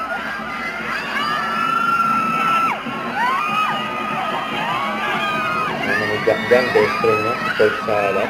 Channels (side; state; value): both; identical; correlation 1.00